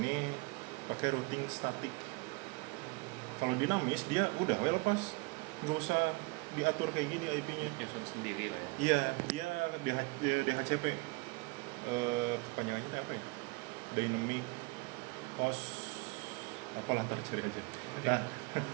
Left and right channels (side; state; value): left; quieter; 27.4 dB